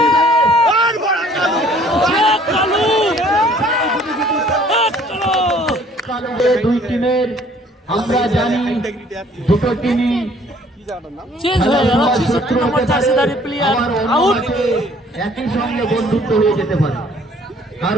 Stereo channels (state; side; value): normal; both; correlation 0.57